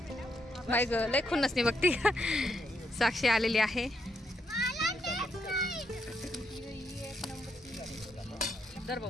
बाई ग लय खुन्नस नाही बघती. साक्षी आलेली आहे. दर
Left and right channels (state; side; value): normal; both; correlation 0.78